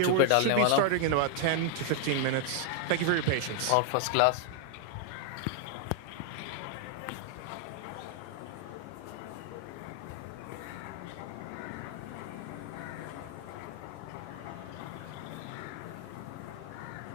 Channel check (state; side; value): different; both; correlation 0.00